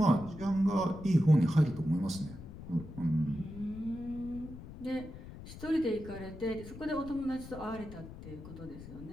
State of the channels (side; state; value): left; noise; rumble, 13 dB below the sound